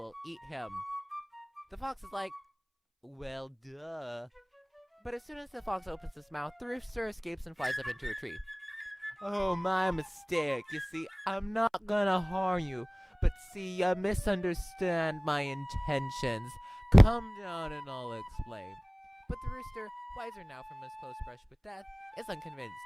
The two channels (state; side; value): identical; both; correlation 1.00